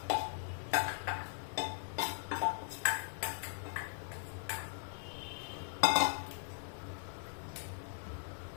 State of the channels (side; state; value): right; silent; digital silence